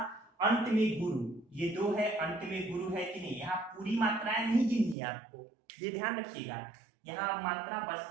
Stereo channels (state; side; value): drops out; left; at 5.0 s